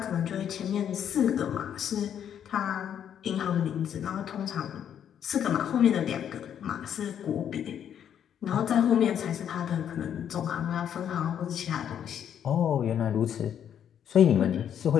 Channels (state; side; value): quieter; right; 9.2 dB